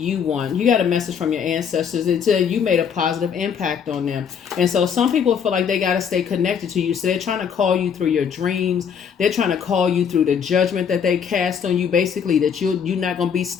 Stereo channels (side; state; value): right; quieter; 7.3 dB